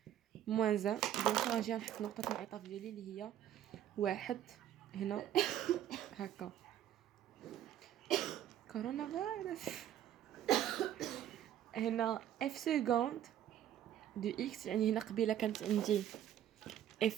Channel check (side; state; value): left; quieter; 11.3 dB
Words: موان زان. دونك غنجي نحط نقطه الانعطاف ديالي اللي هي واحد هنا هكا. كورونا فيروس. هنا اف سكوند دو اكس، يعني هنا قبيله كانت عندي